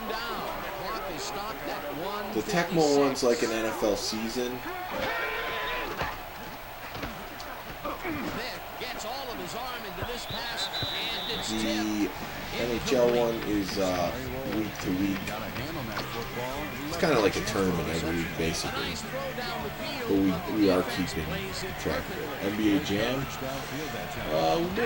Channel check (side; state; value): both; identical; correlation 1.00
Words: down. The clock is stopped at 1:56. The Tecmo one's like an NFL season. Vick gets all of his arm into this pass, and it's The tipped. NHL one is week to week. Got a hand on that football. It's kind of like a tournament every week, A basically. nice throw down the field. But we are keeping track of it. NBA Jam. We've